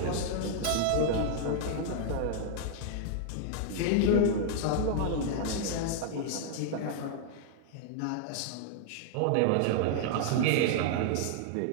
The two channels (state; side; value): different; both; correlation -0.01